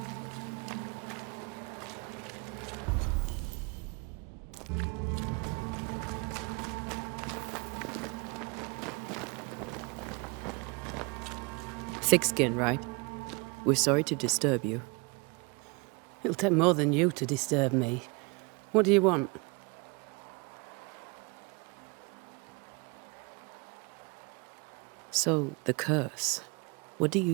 Thick skin, right? We're sorry to disturb you. It'll take more than you to disturb me. What do you want? So, the curse. What do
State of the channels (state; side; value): quieter; left; 29.9 dB